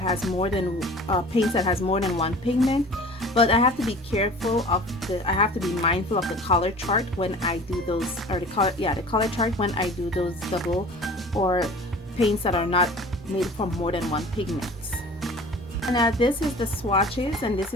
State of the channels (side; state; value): both; normal; correlation 0.43